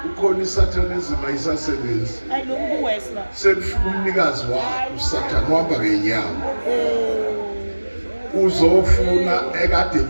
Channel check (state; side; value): inverted; both; correlation -1.00